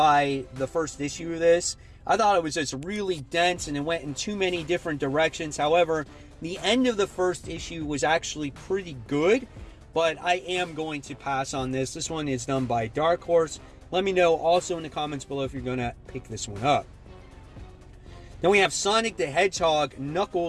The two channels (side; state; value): both; identical; correlation 1.00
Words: the first issue of this. I thought it was just really dense and it went in too many different directions. However, the end of the first issue was actually pretty good, but I am going to pass on this. This one is done by Dark Horse. Let me know also in the comments below if you're going to pick this one up. Then we have Sonic the Hedgehog